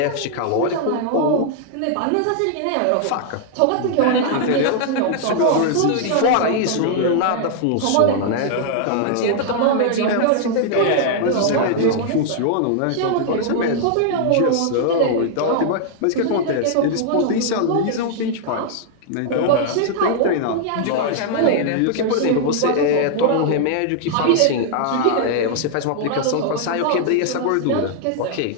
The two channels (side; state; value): both; different; correlation -0.01